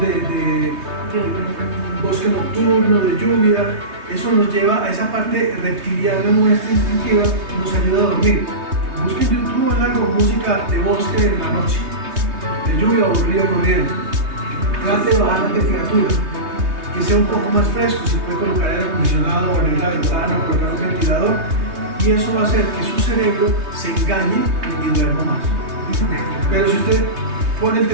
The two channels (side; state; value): left; late; 3.2 ms